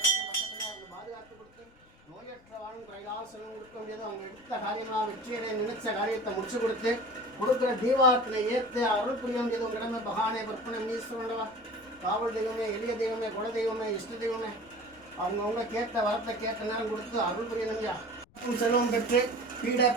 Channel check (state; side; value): noise; left; rumble, 29 dB below the sound